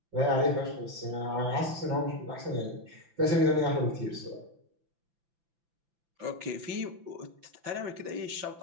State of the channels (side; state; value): left; late; 5.9 ms